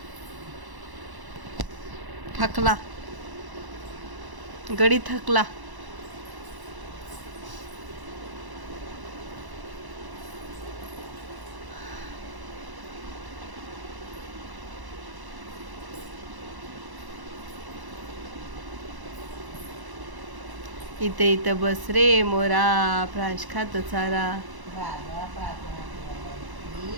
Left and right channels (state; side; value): late; left; 1.1 ms